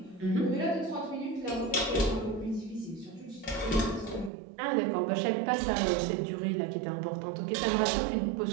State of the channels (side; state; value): left; drops out; at 4.3 s